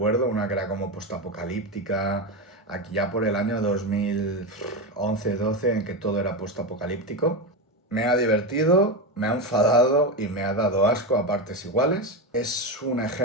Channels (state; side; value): normal; both; correlation 0.15